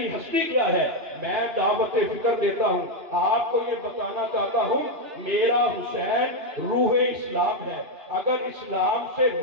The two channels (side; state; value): left; late; 2.8 ms